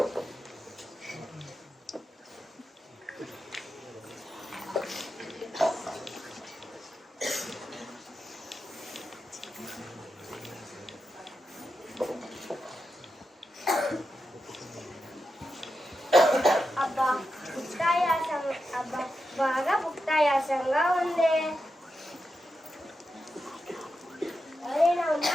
అబ్బా బాగా భుక్తాయాసంగా ఉంది. ఎవరైనా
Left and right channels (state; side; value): normal; both; correlation 0.89